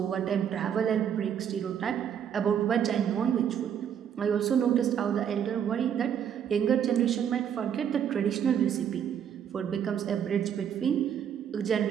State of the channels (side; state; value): left; quieter; 8.7 dB